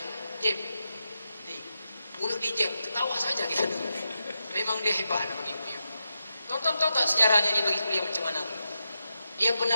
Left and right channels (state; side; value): inverted; both; correlation -0.87